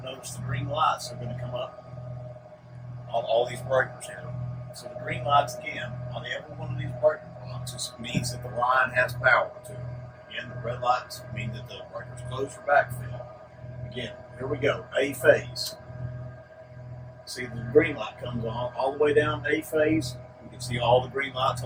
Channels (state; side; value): identical; both; correlation 1.00